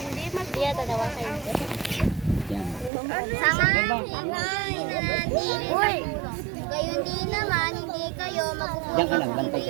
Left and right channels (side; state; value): left; drops out; at 2.9 s